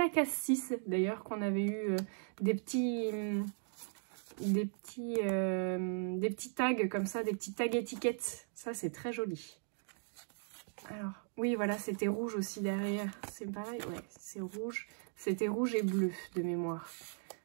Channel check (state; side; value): silent; left; 53 dB below the other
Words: case 6, d'ailleurs, qu'on avait eu des petits tags comme ça, des petits tags étiquettes. Ça, c'est très joli. Alors, oui, voilà, c'était rouge aussi derrière. C'est pareil, ouais, c'est rouge. C'était rouge et bleu de mémoire.